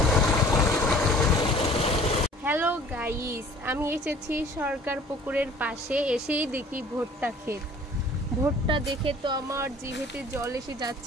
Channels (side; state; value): both; normal; correlation 0.50